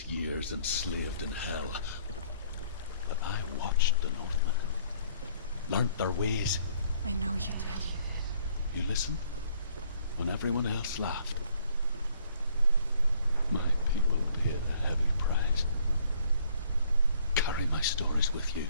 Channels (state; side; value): inverted; both; correlation -0.62